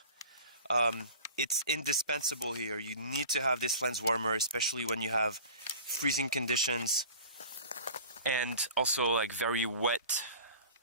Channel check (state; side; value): inverted; both; correlation -0.40